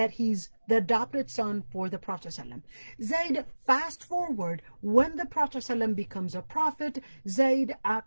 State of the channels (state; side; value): inverted; both; correlation -1.00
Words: he's the adopted son for the Prophet ﷺ. Zayd, fast forward, when the Prophet ﷺ becomes a prophet, Zayd